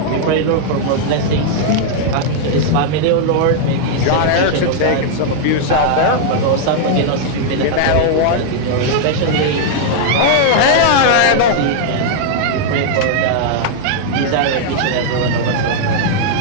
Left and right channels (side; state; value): both; different; correlation -0.01